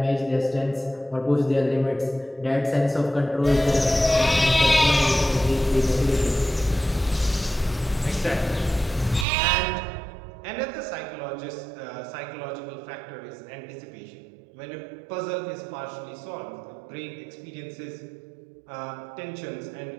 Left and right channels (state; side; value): drops out; left; at 9.2 s